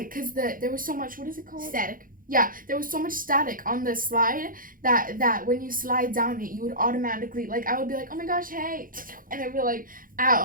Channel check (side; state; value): left; late; 0.40 ms